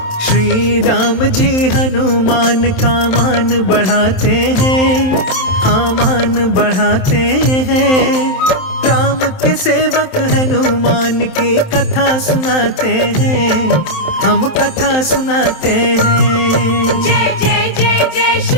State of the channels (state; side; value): late; right; 27 ms